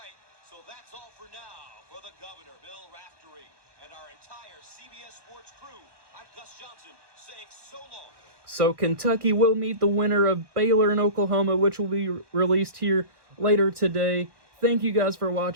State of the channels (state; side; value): late; left; 1.4 ms